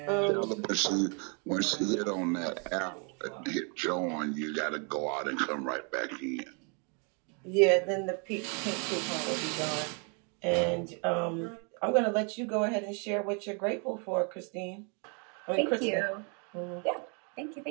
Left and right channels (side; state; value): left; quieter; 36.6 dB